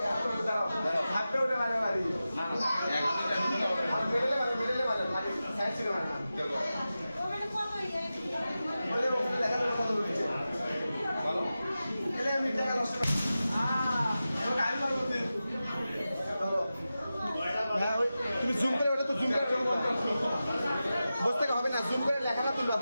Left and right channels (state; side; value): inverted; both; correlation -0.93